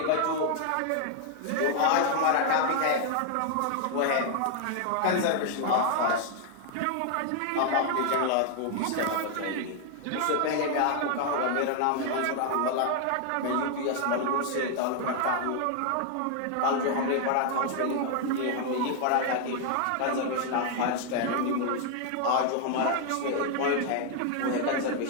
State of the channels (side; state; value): both; different; correlation 0.00